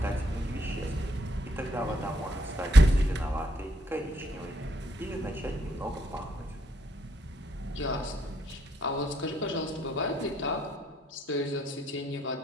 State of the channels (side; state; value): both; normal; correlation 0.73